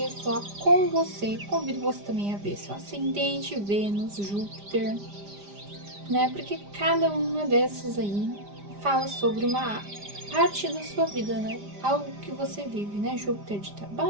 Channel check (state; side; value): late; left; 5.0 ms